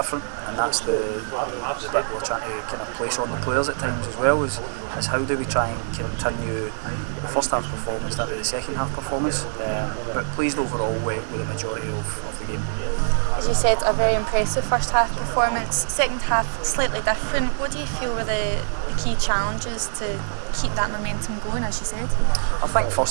and that's the bit we're trying to kind of place on the players at times as well, is how do we try and continue the first half performance into the second half performance, but pleased overall with the majority of the game. As you said, a very impressive first half performance. Second half slightly different. What do you feel were the key challenges to keep that momentum going, as you said? I think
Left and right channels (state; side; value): silent; left; 63 dB below the other